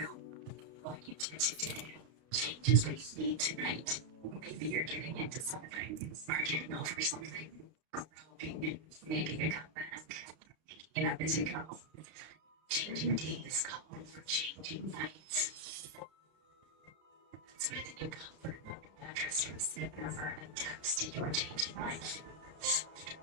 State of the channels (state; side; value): late; left; 32 ms